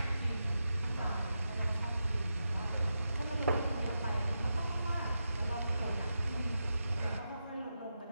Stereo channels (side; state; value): both; inverted; correlation -0.88